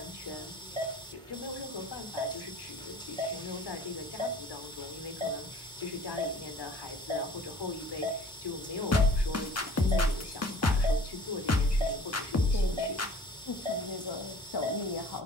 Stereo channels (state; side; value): normal; both; correlation 0.49